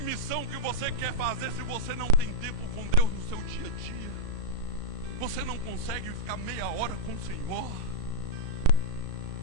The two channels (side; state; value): left; late; 35 ms